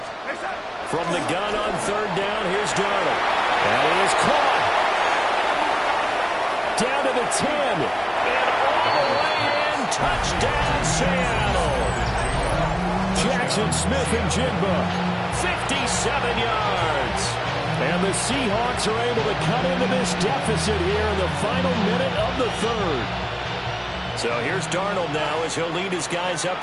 From the gun on third down, here's Darnold. And it is caught. Down to the 10. And all the way in. Touchdown, Seattle. Jackson Smith and Jigba. 57 yards. And the Seahawks are able to cut into this deficit here in the final minute of the third. So here's Darnold now as he'll lead his guys up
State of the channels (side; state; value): both; identical; correlation 1.00